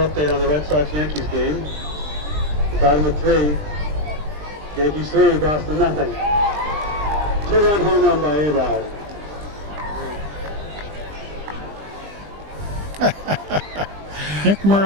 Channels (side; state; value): left; late; 20 ms